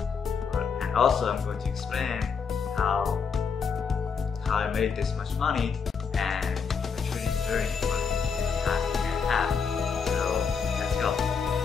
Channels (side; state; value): right; quieter; 5.9 dB